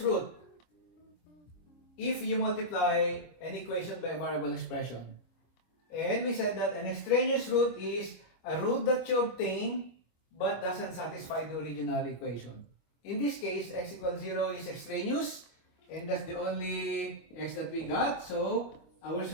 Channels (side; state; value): right; late; 25 ms